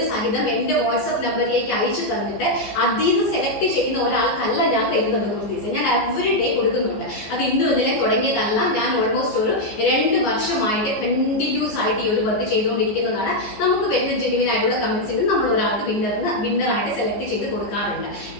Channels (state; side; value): late; right; 14 ms